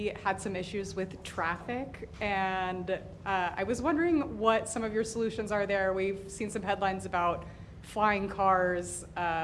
had some issues with traffic, and I was wondering what some of your solutions are there. We've seen some headlines about flying cars.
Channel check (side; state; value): both; identical; correlation 1.00